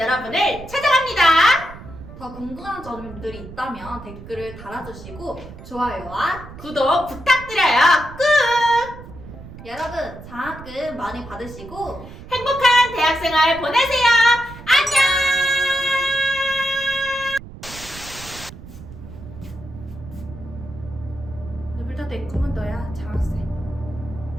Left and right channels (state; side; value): noise; right; rumble, 15 dB below the sound